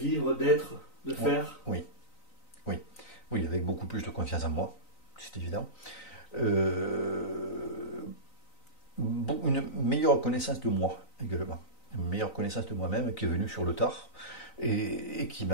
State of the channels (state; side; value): late; right; 3.9 ms